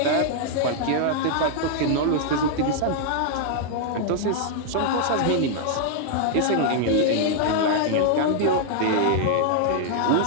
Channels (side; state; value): both; different; correlation 0.00